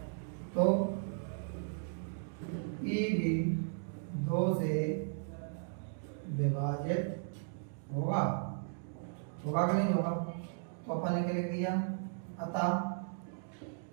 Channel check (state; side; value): silent; left; digital silence